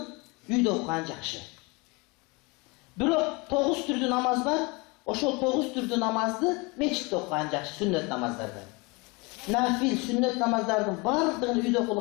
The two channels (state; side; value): quieter; right; 27.1 dB